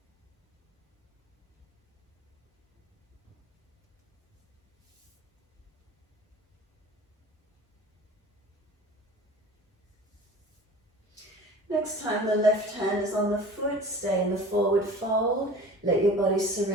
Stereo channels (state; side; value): normal; both; correlation 0.41